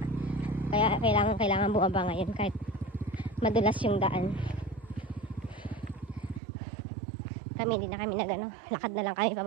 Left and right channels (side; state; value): left; drops out; at 6.4 s